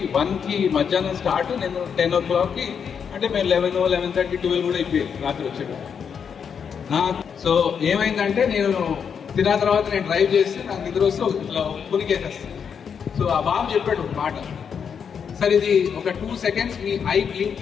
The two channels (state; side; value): quieter; right; 7.0 dB